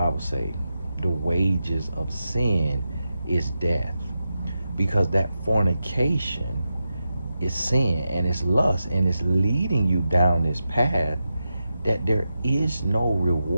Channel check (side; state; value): both; inverted; correlation -0.89